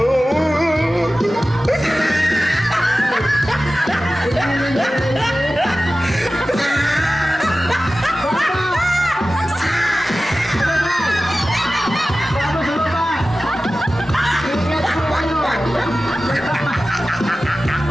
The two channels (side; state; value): both; normal; correlation 0.96